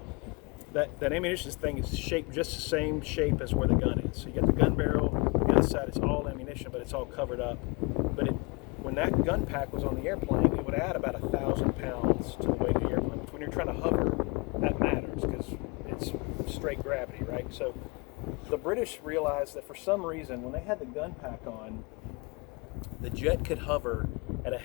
That ammunition thing is shaped just the same shape as where the gun is. So you got the gun barrel, the other side is all ammunition, but it's all covered up. But when that gun pack was on the airplane, it would add about 1,000 pounds to the weight of the airplane. Which when you're trying to hover, that matters because it's straight gravity, right? So the British realized that for some reason, when they had the gun pack on, the jet could hover at a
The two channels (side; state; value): right; quieter; 28.4 dB